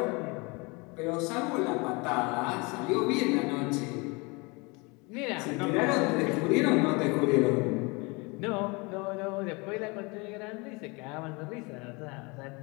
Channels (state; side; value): quieter; right; 27.8 dB